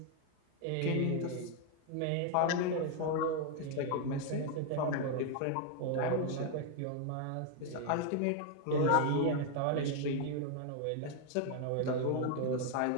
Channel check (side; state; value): both; different; correlation 0.00